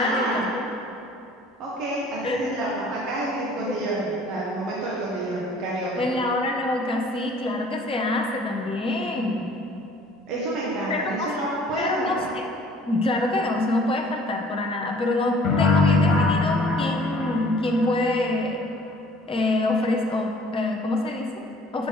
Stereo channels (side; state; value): both; normal; correlation 0.54